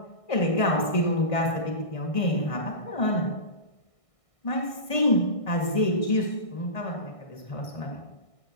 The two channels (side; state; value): right; late; 1.6 ms